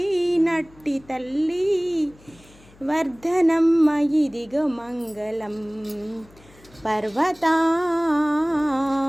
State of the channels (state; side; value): noise; left; hum, 26 dB below the sound